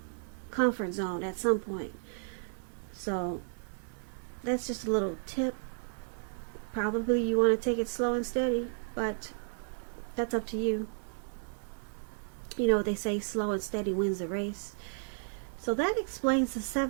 comfort zone at some point. So that's just a little tip. Probably you want to take it slow and steady, but that's up to you. You know, they say slow and steady wins the race. So that explains the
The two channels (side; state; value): left; silent; digital silence